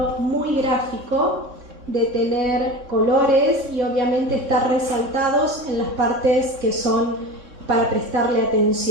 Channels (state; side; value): late; left; 3.6 ms